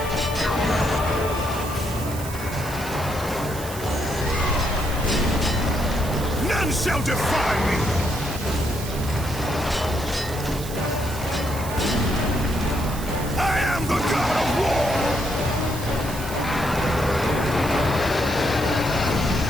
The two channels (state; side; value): noise; right; hiss, 12 dB below the sound